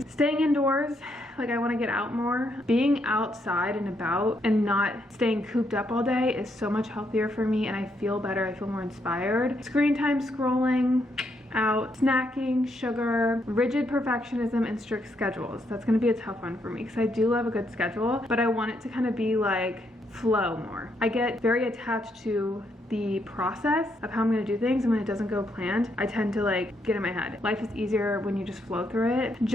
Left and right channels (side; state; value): both; normal; correlation 0.76